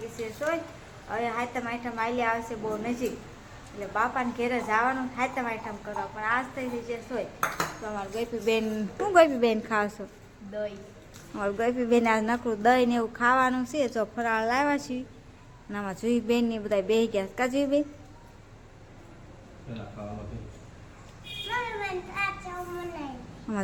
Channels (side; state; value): both; identical; correlation 1.00